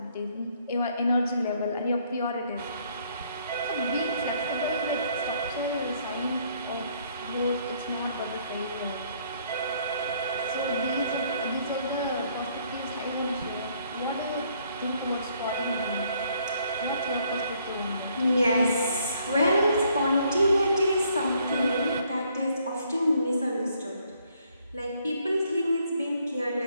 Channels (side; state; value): both; inverted; correlation -0.67